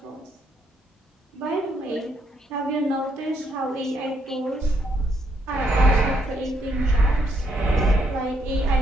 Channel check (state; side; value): normal; both; correlation 0.74